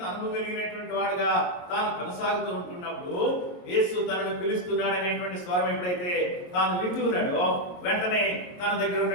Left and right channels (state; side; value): late; right; 22 ms